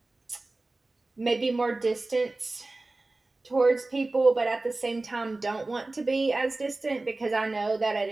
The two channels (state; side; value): quieter; left; 3.1 dB